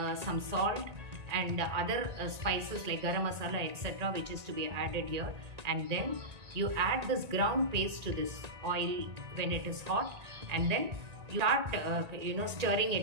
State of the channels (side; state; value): left; late; 1.9 ms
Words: some salt and other spices like garam masala, etc., which is to be added here. And then you add this ground paste to this oil when it is hot, and then you start stirring